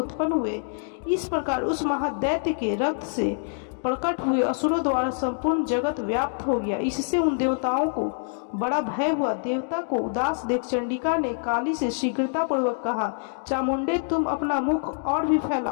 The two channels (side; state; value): right; silent; digital silence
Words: हुए। इस प्रकार उस महादैत्य के रक्त से प्रकट हुए असुरों द्वारा संपूर्ण जगत व्याप्त हो गया। इससे उन देवताओं को बड़ा भय हुआ। देवता को उदास देख चंडिका ने काली से शीघ्रता पूर्वक कहा, चामुंडे, तुम अपना मुख और भी